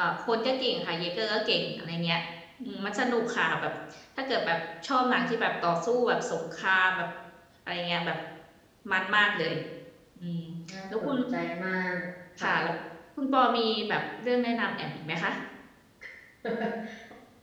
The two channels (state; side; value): identical; both; correlation 1.00